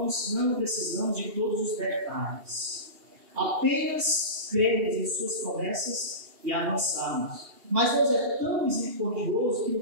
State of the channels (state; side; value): late; left; 2.8 ms